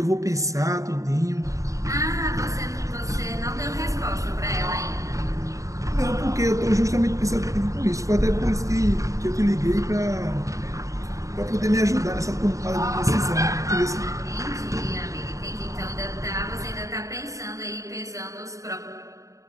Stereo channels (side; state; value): left; late; 0.16 ms